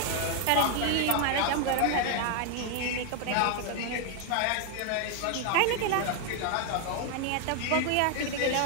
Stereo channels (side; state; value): both; different; correlation 0.00